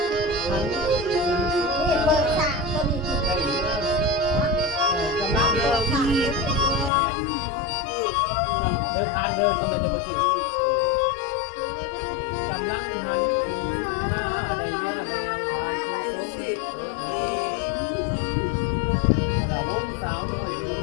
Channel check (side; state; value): right; drops out; at 6.9 s